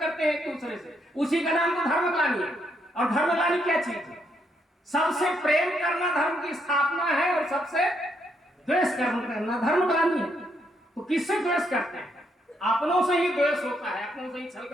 हैं एक दूसरे से, उसी का नाम तो धर्मग्लानि है। और धर्मग्लानि क्या चीज है? सबसे प्रेम करना धर्म की स्थापना है और सबसे द्वेष करना धर्मग्लानि है। तो किससे द्वेष करते हैं? अपनों से ही द्वेष होता है, अपनों से ही छल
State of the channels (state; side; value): normal; both; correlation 0.75